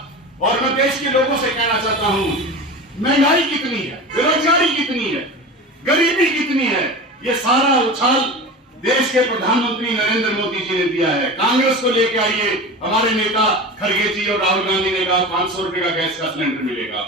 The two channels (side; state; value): both; normal; correlation 0.30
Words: और मैं देश के लोगों से कहना चाहता हूं, महंगाई कितनी है, बेरोजगारी कितनी है, गरीबी कितनी है, ये सारा उछाल देश के प्रधानमंत्री नरेंद्र मोदी जी ने दिया है। कांग्रेस को लेके आइए, हमारे नेता खड़गे जी और राहुल गांधी ने कहा 500 रुपए का गैस का सिलेंडर मिलेगा